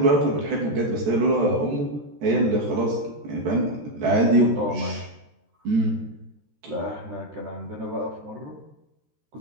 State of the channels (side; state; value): left; late; 13 ms